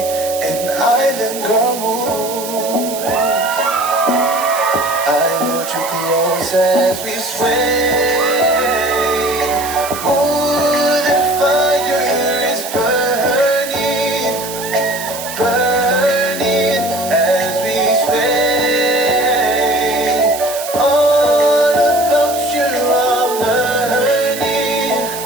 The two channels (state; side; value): noise; right; hiss, 10 dB below the sound